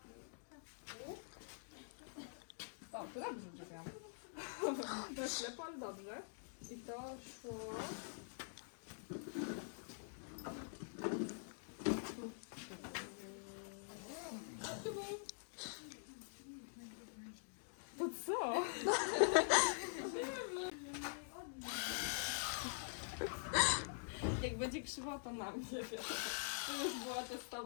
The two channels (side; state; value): right; silent; digital silence